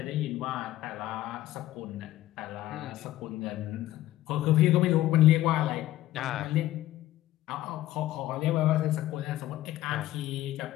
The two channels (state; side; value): quieter; right; 14.7 dB